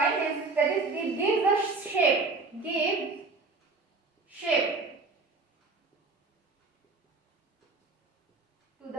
is that is it gives the shape to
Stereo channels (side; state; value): left; quieter; 3.8 dB